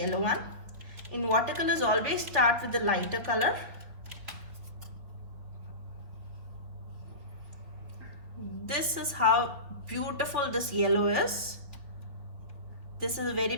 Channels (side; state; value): left; late; 3.7 ms